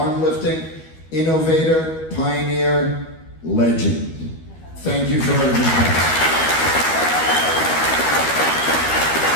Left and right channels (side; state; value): right; late; 12 ms